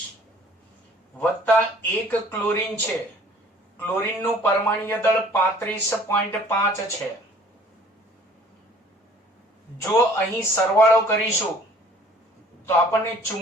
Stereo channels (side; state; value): both; normal; correlation 0.54